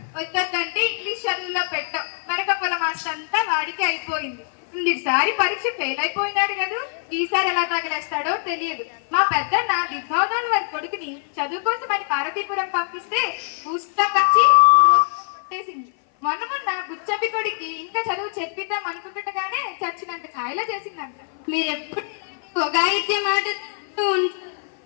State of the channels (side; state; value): right; silent; 58 dB below the other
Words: వద్దంటే ఇంగ్లీష్ చదువులో పెట్టాం. మరకపుల మాస్టర్ అంతా వాడికి అయిపోయింది. ఈసారి పరీక్ష ఫెయిల్ అయిపోయినాడు కదా, ఈసారి ఎలా తగిలేస్తాడో తెలియదు. మా పెద్దన్న దిగ్భవనాల వారి కొడుకుని చదువు కోసం అని పార్వతీపురం పంపిస్తే పుస్తకం వచ్చి కొట్టేసింది. మొన్న బుచ్చబ్బి కొడుకి ఇంకా చదువు చెప్పిద్దాం అనుకుంటుండగానే చచ్చినంత కాయలో చేసిందంట. మీరెప్పుడు ఒగాయిత్య మాట